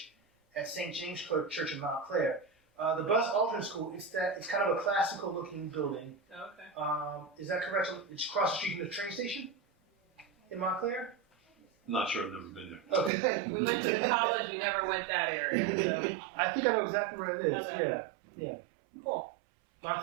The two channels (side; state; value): left; drops out; at 13.1 s